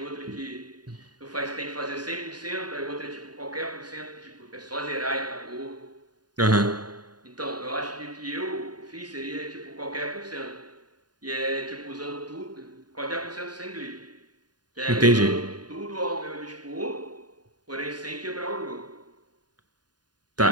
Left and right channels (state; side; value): late; left; 0.70 ms